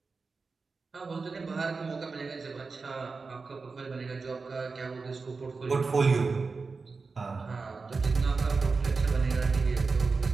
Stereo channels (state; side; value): quieter; left; 4.3 dB